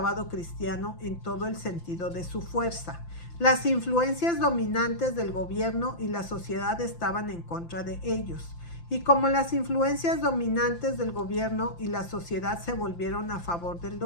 cristiano en todo el sentido de su fuerza. Las influencias dominantes del gobierno y la sociedad estaban en contra de ellos. Y como las influencias dominantes del gobierno y la sociedad se volvieron a favor del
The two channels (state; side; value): late; right; 5.8 ms